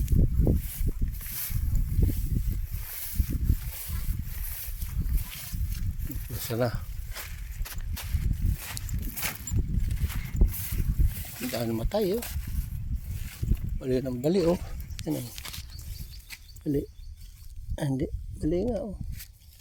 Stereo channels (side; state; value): both; identical; correlation 1.00